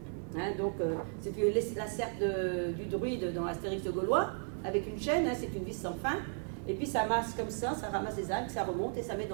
Hein, donc c'est la serpe du druide dans Astérix le Gaulois, avec une chaîne, hein, c'est une vis sans fin, et puis ça masse comme ça ramasse les algues, ça remonte et ça met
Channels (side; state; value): left; silent; 55 dB below the other